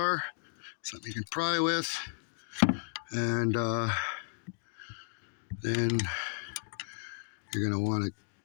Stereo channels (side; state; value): right; silent; 55 dB below the other